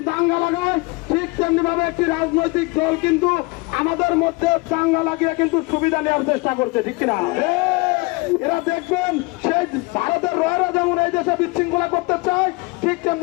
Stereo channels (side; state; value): right; quieter; 26.1 dB